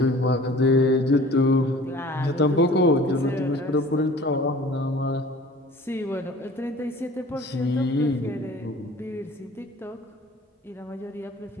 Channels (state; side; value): normal; both; correlation 0.46